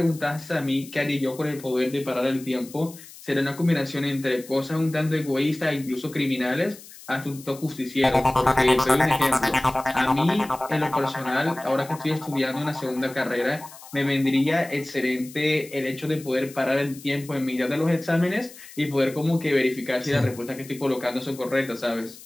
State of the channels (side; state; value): left; noise; hiss, 18 dB below the sound